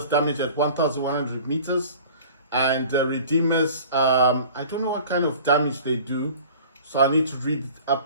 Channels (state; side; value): inverted; both; correlation -0.44